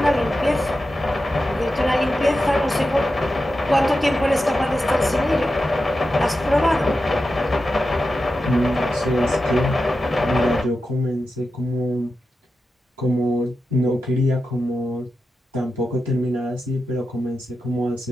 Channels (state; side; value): normal; both; correlation 0.91